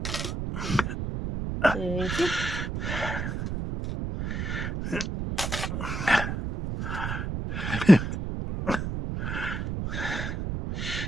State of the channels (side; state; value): right; noise; rumble, 3 dB below the sound